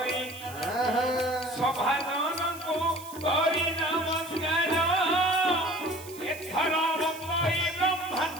সভাজনকু করি নমস্কার এথর বন্দই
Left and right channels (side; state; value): right; noise; hiss, 16 dB below the sound